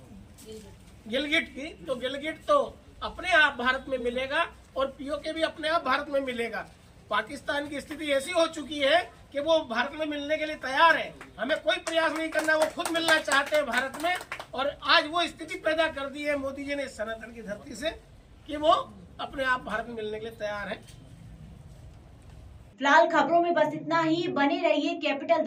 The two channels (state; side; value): identical; both; correlation 1.00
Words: की, तो गिलगिट तो अपने आप भारत में मिलेगा और पीओके भी अपने आप भारत में मिलेगा। पाकिस्तान की स्थिति ऐसी हो चुकी है कि वो भारत में मिलने के लिए तैयार है, हमें कोई प्रयास नहीं करना, वो खुद मिलना चाहते हैं भारत में। और आज वो स्थिति पैदा कर दी है मोदी जी ने सनातन की धरती से कि वो अपने आप भारत में मिलने के लिए तैयार है। फिलहाल खबरों में बस इतना ही। बने रहिए कैपिटल